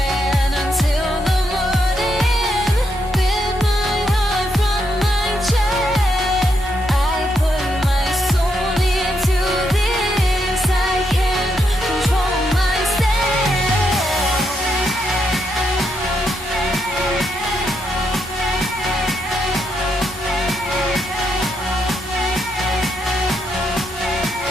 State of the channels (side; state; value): both; normal; correlation 0.79